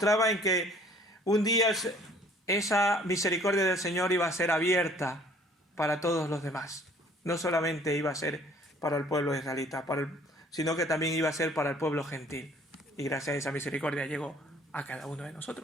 que un día esa misericordia del Señor iba a ser abierta para todos los demás. No solamente iba a ser para el pueblo israelita, sino que también iba a ser para el pueblo gentil. Y gracias a esa misericordia llegó a cada uno de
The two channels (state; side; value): normal; both; correlation 0.56